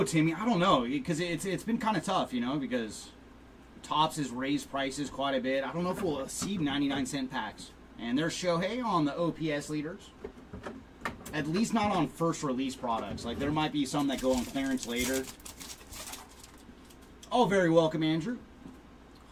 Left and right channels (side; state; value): both; identical; correlation 1.00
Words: Timmy. I don't know, because it's been kind of tough, you know, because Topps has raised prices quite a bit. I don't know if we'll see 99-cent packs. And there's Shohei on the OPS leaders. At least not on first release products. Like, there might be some that go on clearance later. Oh, very welcome, Andrew.